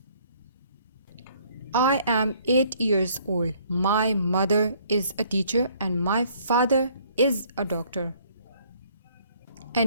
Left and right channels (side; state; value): both; inverted; correlation -0.61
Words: I am 8 years old. My mother is a teacher and my father is a doctor.